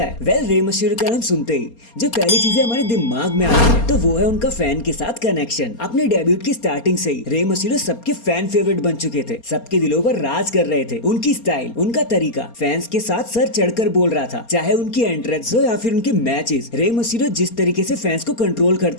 है। वेल, रे मिस्टीरियो का नाम सुनते ही जो पहली चीजें हमारे दिमाग में आती है तो वो है उनका फैन के साथ कनेक्शन। अपने डेब्यूट की स्टार्टिंग से ही रे मिस्टीरियो सबके फैन फेवरेट बन चुके थे, सबके दिलों पर राज कर रहे थे। उनकी स्टाइल, उनका तरीका फैंस के साथ सर चढ़कर बोल रहा था, चाहे उनकी एंट्रेंस हो या फिर उनके मैचेस। रे मिस्टीरियो जिस तरीके से फैंस को कंट्रोल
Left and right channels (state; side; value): late; right; 4.3 ms